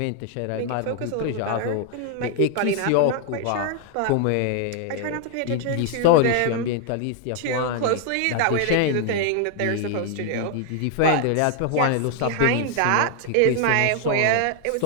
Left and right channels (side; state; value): both; different; correlation 0.00